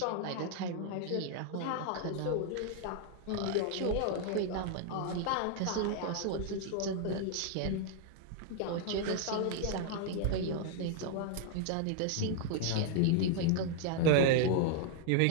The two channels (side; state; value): both; different; correlation 0.00